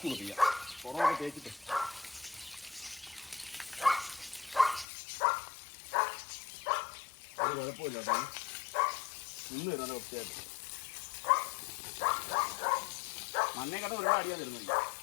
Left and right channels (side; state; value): right; drops out; at 4.9 s